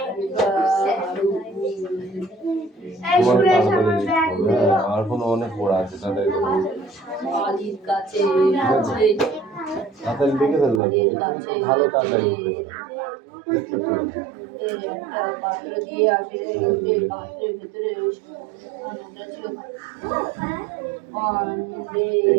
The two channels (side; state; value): left; drops out; at 10.8 s